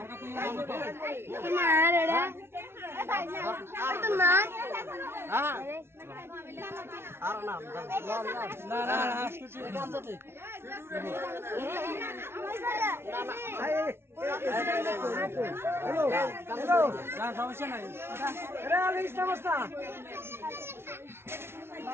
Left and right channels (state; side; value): late; left; 0.12 ms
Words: মার এডা তো মার হ্যাঁ আর না না না হাসকুচি কাম করতে হ্যালো হ্যালো না সমস্যা নাই এরা আলিস নমস্কার